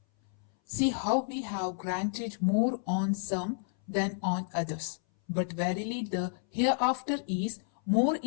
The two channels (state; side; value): silent; right; 57 dB below the other